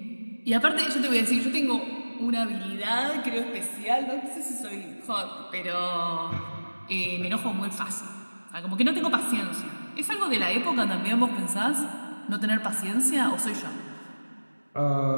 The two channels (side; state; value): both; inverted; correlation -1.00